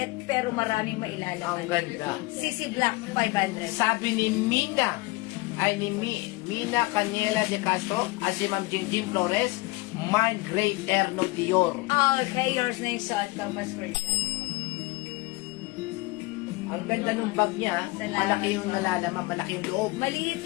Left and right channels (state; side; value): quieter; right; 22.9 dB